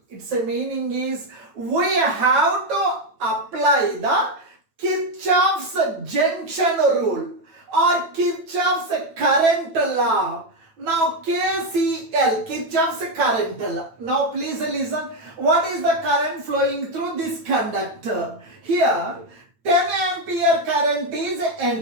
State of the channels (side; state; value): left; late; 9.0 ms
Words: Its meaning is we have to apply the Kirchhoff's junction rule or Kirchhoff's current law. Now KCL, Kirchhoff's current law. Now please listen. What is the current flowing through this conductor? Here 10 ampere current is